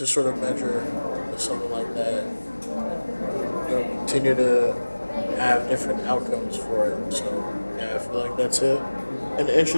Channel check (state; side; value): inverted; both; correlation -1.00